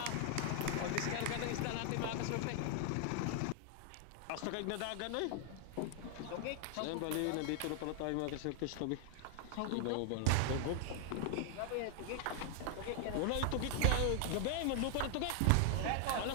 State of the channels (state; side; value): different; both; correlation 0.00